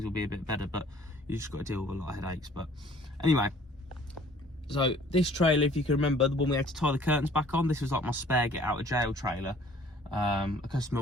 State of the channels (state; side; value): normal; both; correlation 0.54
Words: will be a bit better. But you just got to deal with a lot of headaches. But anyway. So this trailer, if you can remember, the one we had to tie the curtains back on, this was like my spare get out of jail trailer. A customer